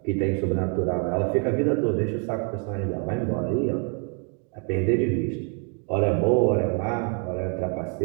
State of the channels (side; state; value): left; quieter; 38.2 dB